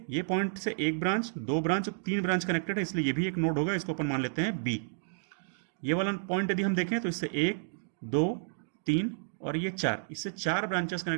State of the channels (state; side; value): silent; left; digital silence